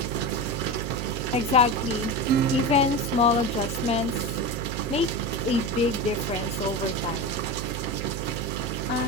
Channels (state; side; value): noise; right; hum, 4 dB below the sound